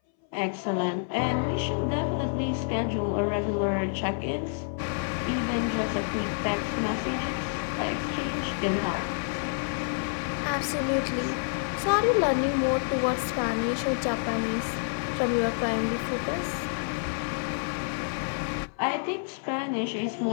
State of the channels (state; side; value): silent; right; 59 dB below the other